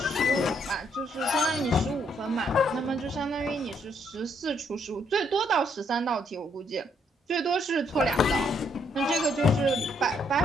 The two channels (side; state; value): both; normal; correlation 0.71